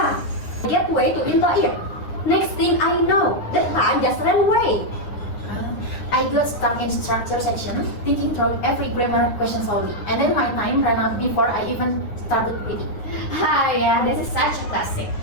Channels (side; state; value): right; late; 9.7 ms